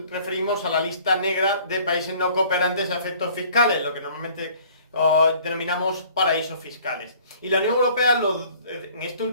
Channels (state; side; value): inverted; both; correlation -0.53